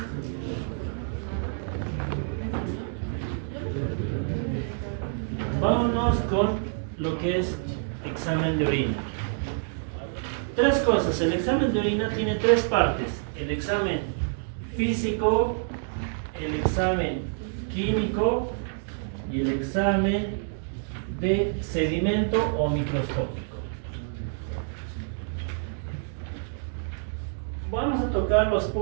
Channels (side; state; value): left; silent; digital silence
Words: Vámonos con lo que es examen de orina. Tres cosas. El examen de orina tiene tres partes. El examen físico, el examen químico y el examen de sedimento o microscópico. Vamos a tocar los